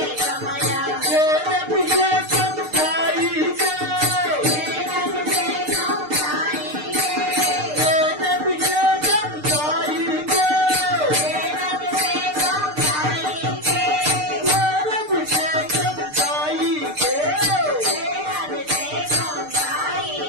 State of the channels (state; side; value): late; left; 6.6 ms